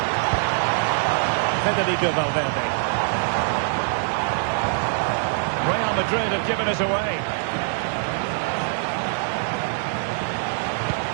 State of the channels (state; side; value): silent; left; 63 dB below the other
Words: Federico Valverde. Real Madrid have given us away.